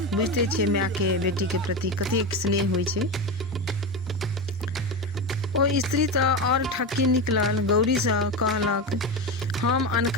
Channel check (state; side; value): normal; both; correlation 0.19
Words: बुझते छियै माय के बेटी के प्रति कतेक स्नेह होइ छै। ओ स्त्री तऽ और ठक्की निकलल। गौरी से कहलक हम